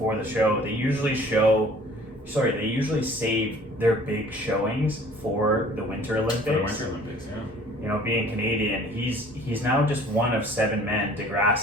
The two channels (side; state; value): both; normal; correlation 0.51